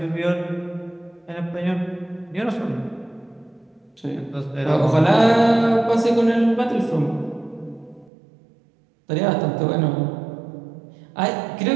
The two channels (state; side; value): drops out; left; at 8.1 s